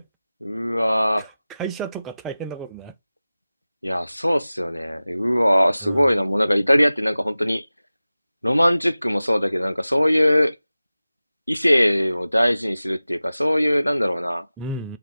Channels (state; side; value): inverted; both; correlation -0.97